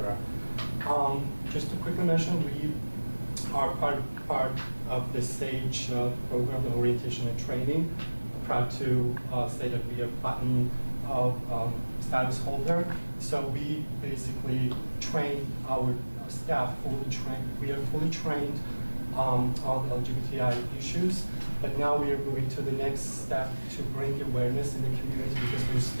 Just to quickly mention, we are part of the SAGE program, orientation and training. I'm proud to say that we are platinum status holder. So we basically train our staff, we are fully trained on LGBTI issues, but now we are moving to the next step to bring awareness in the community, because we're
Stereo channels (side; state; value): both; inverted; correlation -1.00